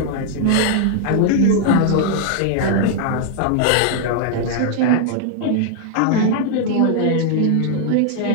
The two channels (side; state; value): both; different; correlation 0.00